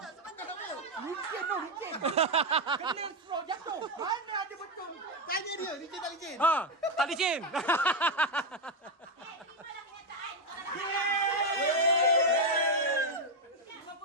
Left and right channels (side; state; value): both; normal; correlation 0.05